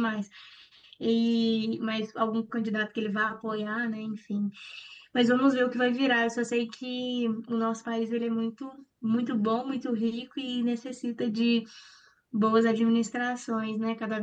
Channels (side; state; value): both; identical; correlation 1.00